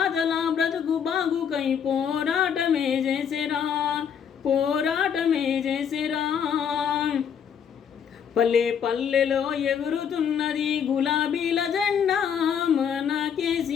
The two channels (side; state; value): right; quieter; 7.8 dB